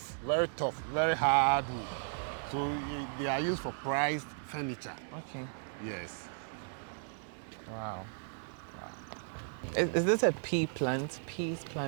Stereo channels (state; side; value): silent; left; digital silence